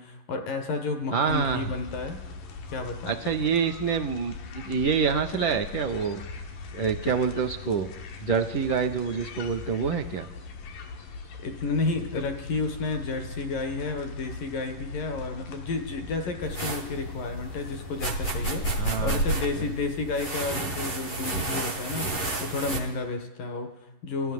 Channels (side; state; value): right; late; 11 ms